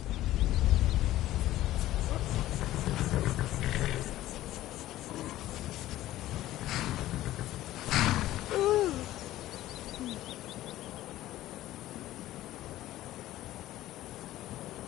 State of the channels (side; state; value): right; quieter; 14.9 dB